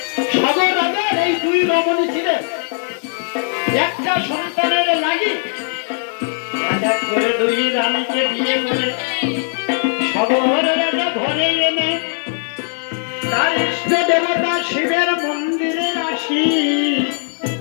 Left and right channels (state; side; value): silent; right; digital silence